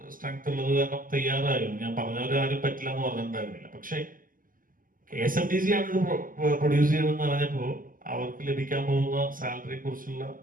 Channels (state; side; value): late; left; 0.41 ms